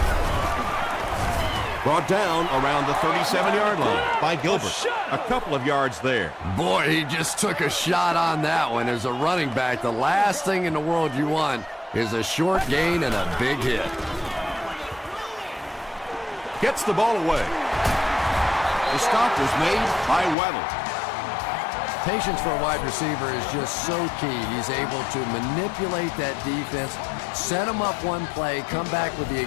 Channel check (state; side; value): drops out; right; at 20.4 s